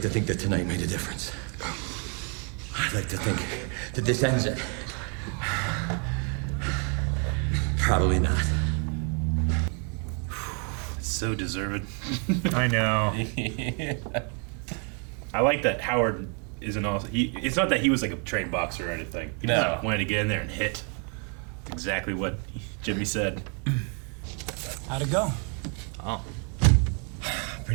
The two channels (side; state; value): left; quieter; 38.6 dB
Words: to think that tonight made a difference. I'd like to think that this ends it. Probably not. So deserved. I know. I like that Howard isn't also. It's not that he was like a trained boxer or anything. He No. just wanted to get in there and hit. That's exactly what Jimmy said. How'd it go? Oh.